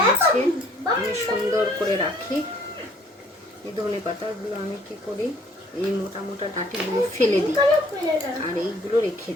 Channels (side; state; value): both; normal; correlation 0.59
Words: আমি সুন্দর করে রাখি। এই ধনে পাতাগুলো আমি কি করি, এই মোটা মোটা ডাঁটিগুলো ফেলে দিই আর এইগুলো রেখে